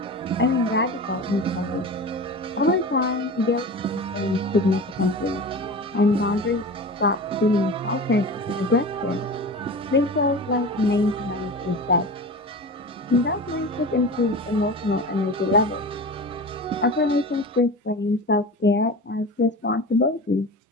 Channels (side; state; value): both; normal; correlation 0.31